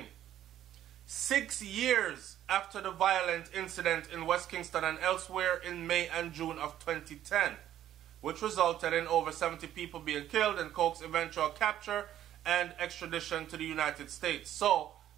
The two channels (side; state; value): left; quieter; 11.8 dB